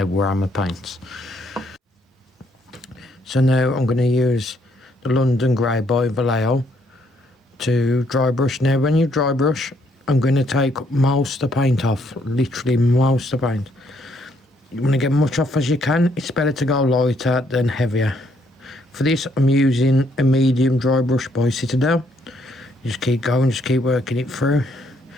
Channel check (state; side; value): normal; both; correlation 0.70